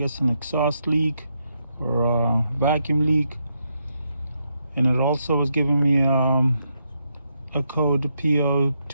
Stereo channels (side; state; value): both; inverted; correlation -0.80